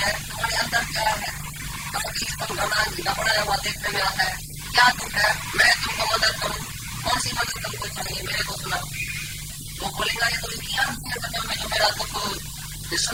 तुम्हारे अंदर क्या है, काय के लिए तुम घबराया हुआ देखने में आता है, क्या दुख है, मैं तुमको मदद करूं, कौन सी मदद तुमको चाहिए मेरे को सुनाओ। तो बोलेगा ये तो एक ही आदमी है दुनिया में जो मेरा दुख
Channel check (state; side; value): identical; both; correlation 1.00